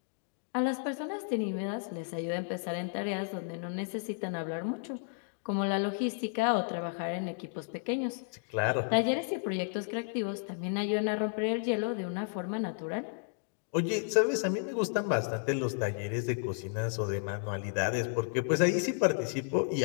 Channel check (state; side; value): silent; right; digital silence